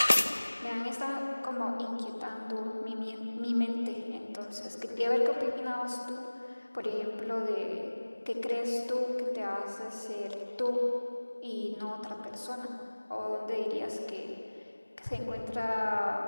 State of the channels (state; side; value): inverted; both; correlation -1.00